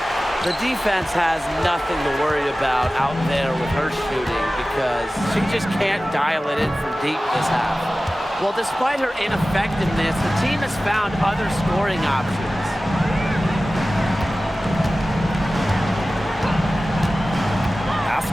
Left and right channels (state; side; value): normal; both; correlation 0.96